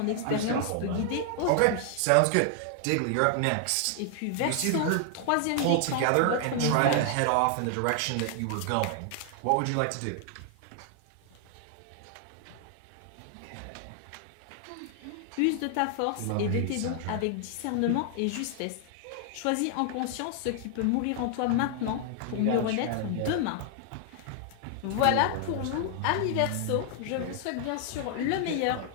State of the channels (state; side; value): different; both; correlation 0.00